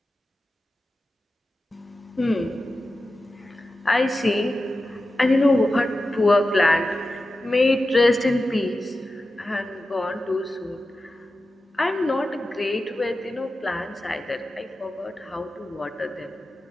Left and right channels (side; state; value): both; normal; correlation 0.93